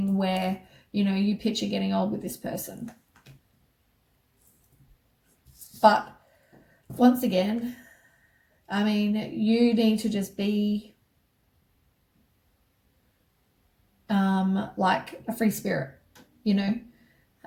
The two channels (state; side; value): identical; both; correlation 1.00